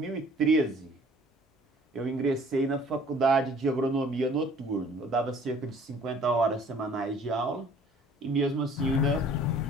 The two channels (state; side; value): normal; both; correlation 0.54